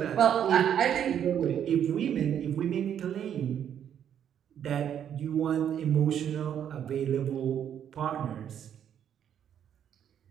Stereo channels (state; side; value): quieter; left; 9.3 dB